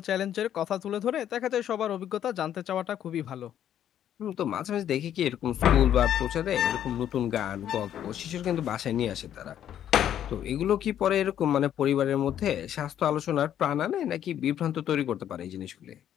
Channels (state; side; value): quieter; right; 10.5 dB